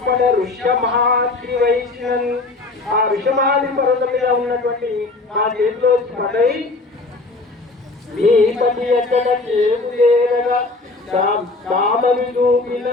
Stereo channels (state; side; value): quieter; right; 3.3 dB